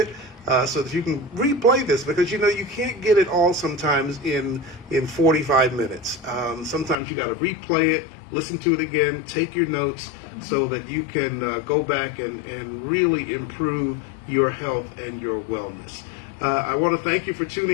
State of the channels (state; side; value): drops out; right; at 7.0 s